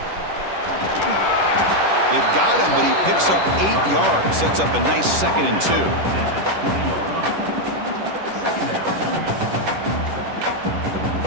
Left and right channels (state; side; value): late; left; 10 ms